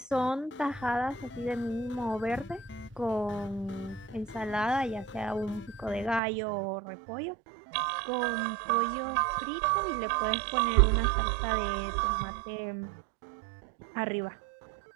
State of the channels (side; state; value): left; drops out; at 6.2 s